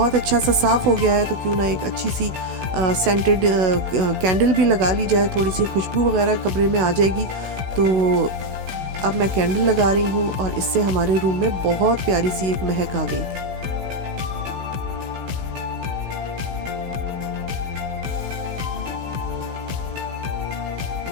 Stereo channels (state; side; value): late; left; 16 ms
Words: अच्छा सा साफ़ हो गया है तो क्यों ना एक अच्छी सी सेंटेड कैंडल भी लगा ली जाए, थोड़ी सी खुशबू वगैरह कमरे में आ जाएगी। तो अब मैं कैंडल लगा रही हूँ और इससे हमारे रूम में बहुत प्यारी सी एक महक आ गई थी।